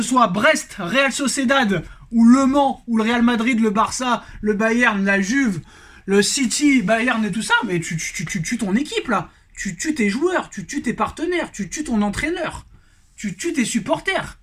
soit Brest, Real Sociedad, ou Le Mans, ou le Real Madrid, le Barça, le Bayern, la Juve, le City, Bayern et tout ça, mais tu tues ton équipe là. Tu tues tes joueurs, tu tues tes partenaires, tu tues ton entraîneur, tu tues tes supporters.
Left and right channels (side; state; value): both; identical; correlation 1.00